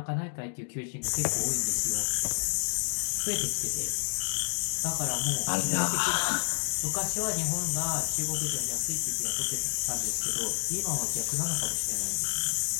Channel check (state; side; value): silent; right; digital silence